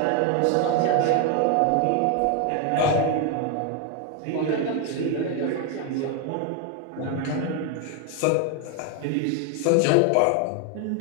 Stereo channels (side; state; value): both; different; correlation 0.01